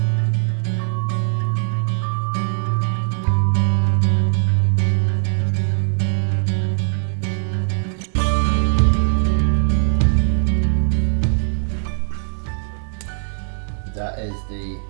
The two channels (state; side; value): silent; left; digital silence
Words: That is the